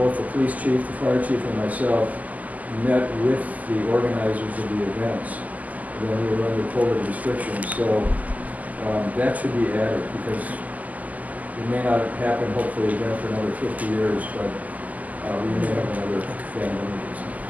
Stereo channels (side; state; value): left; late; 0.078 ms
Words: the police chief, the fire chief, and myself met with the organizers of the events when we were under COVID restrictions. So that should be added, because it may not happen, hopefully, again for another 50 years, but we may have another pandemic.